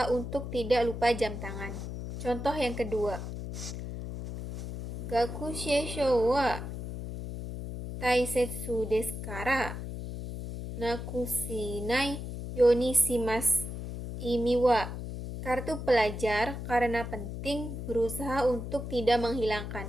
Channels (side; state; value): left; noise; hum, 7 dB below the sound